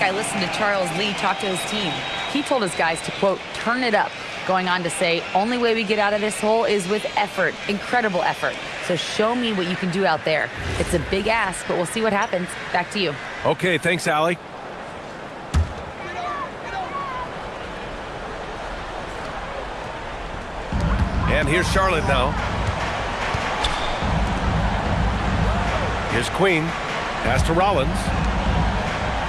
listened to Charles Lee talk to his team. He told his guys to, quote, turn it up, going on to say, only way we get out of this hole is with effort, incredible effort. So show me what you can do out there. It's a big ask, but we'll see what happens. Back to you. Okay, thanks, Allie. And here's Charlotte now. Here's Queen. Pass to Rollins.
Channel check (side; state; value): both; identical; correlation 1.00